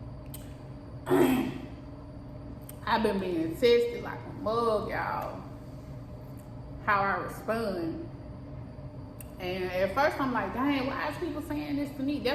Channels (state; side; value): identical; both; correlation 1.00